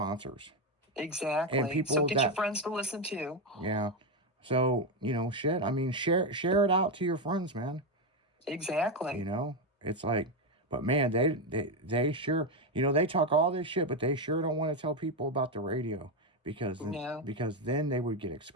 Exactly. And people so get your friends to listen too. Yeah. So, you know, shit. I mean, share it out to your friends, man. Exactly. You know? It's like, but man, they sure, you know, they talk all this shit, but they sure don't want to tell people about the radio because then they would get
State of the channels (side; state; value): both; normal; correlation 0.08